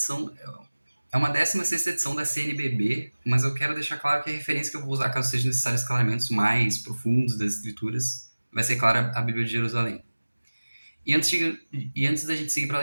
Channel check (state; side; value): inverted; both; correlation -1.00